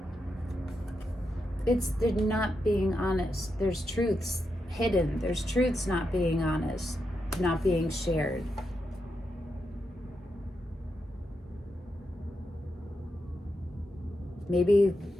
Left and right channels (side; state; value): both; normal; correlation 0.85